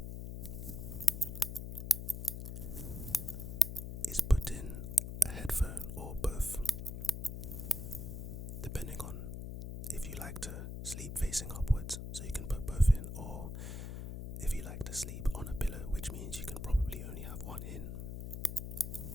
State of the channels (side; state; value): left; noise; hum, 6 dB below the sound